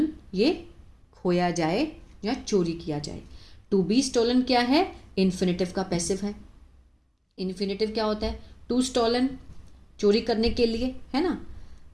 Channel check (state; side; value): identical; both; correlation 1.00